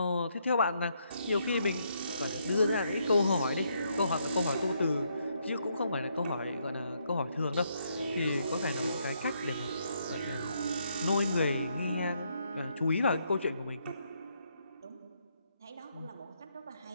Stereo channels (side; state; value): both; inverted; correlation -0.75